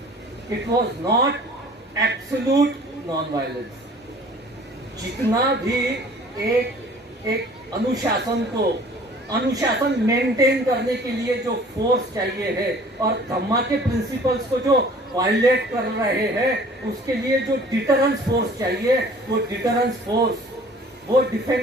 it was not absolute non violence. जितना भी एक अनुशासन मेंटेन करने के लिए जो फोर्स चाहिए है, और धम्मा के प्रिंसिपल्स को जो वायलेट कर रहे हैं, उसके लिए जो डिटरेंस फोर्स चाहिए, वो डिटरेंस फोर्स, वो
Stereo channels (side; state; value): both; normal; correlation 0.50